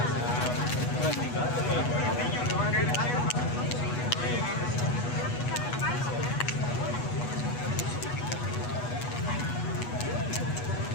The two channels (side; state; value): right; late; 8.2 ms